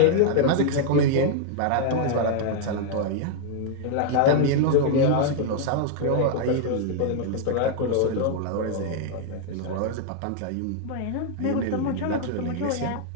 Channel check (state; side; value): different; both; correlation 0.00